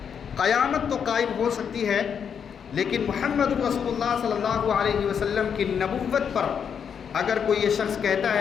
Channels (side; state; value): right; quieter; 7.4 dB